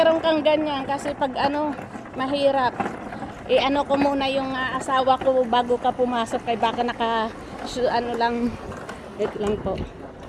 kang ganyan kasi pag mahirap. Ko muna yung asawa ko bago ka pumasok kay baka lang. Wait lang po.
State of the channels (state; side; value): identical; both; correlation 1.00